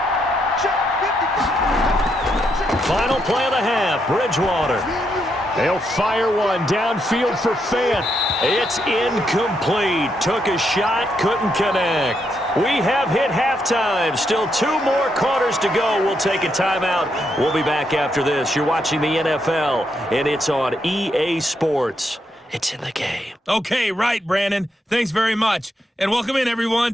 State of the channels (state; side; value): normal; both; correlation 0.79